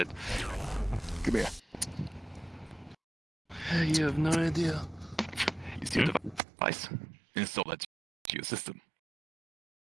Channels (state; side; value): drops out; left; at 6.4 s